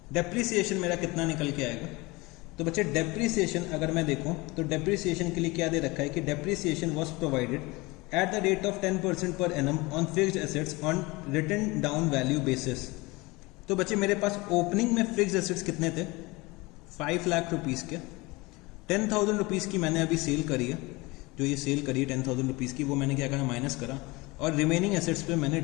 डेप्रीसिएशन मेरा कितना निकल के आएगा। तो बच्चे डेप्रीसिएशन अगर मैं देखूं तो डेप्रीसिएशन के लिए क्या दे रखा है कि depreciation was provided at the rate of 10% per annum on fixed assets on written down value basis. तो बच्चे मेरे पास ओपनिंग में फिक्स्ड एसेट्स कितने थे 5 लाख रुपीज़ के, 10,000 रुपीज़ की मैंने अभी सेल करी है, जो ये सेल करी है 10,000 रुपीज़ की, वो मैंने क्या करा माइनस करा, और रिमेनिंग एसेट्स पे मैंने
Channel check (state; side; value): quieter; right; 23.5 dB